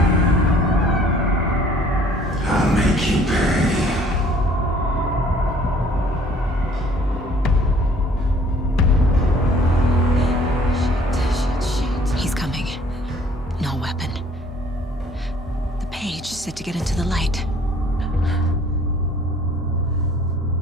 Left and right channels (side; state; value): both; normal; correlation 0.57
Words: I'll make you pay. He's coming. No weapon. The page said to get into the light.